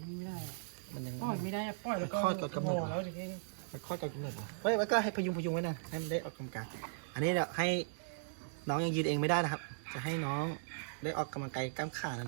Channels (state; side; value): silent; left; digital silence